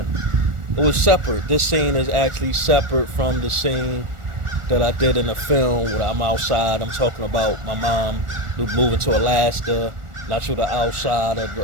It was separate. This scene is actually separate from the scene that I did in the film where I'm outside. I'm talking about my mom moving to Alaska. Not sure the outside of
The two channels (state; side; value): late; left; 1.4 ms